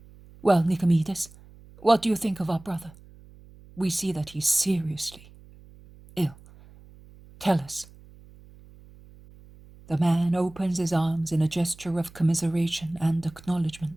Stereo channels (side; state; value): right; noise; hum, 23 dB below the sound